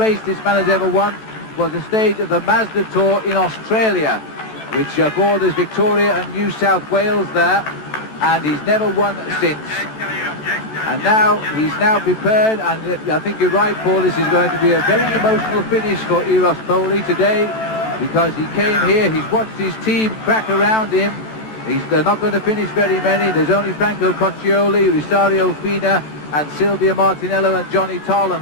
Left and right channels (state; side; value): late; right; 14 ms